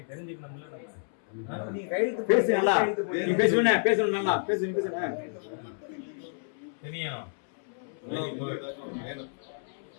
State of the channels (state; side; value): silent; right; 58 dB below the other